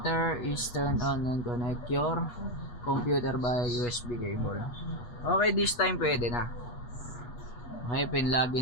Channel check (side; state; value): right; late; 8.3 ms